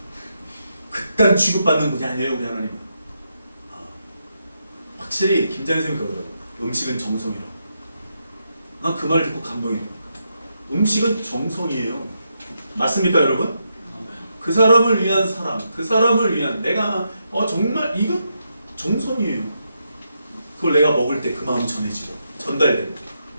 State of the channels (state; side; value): inverted; both; correlation -0.82